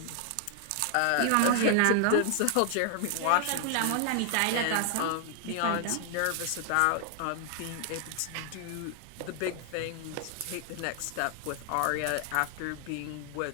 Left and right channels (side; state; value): both; different; correlation 0.00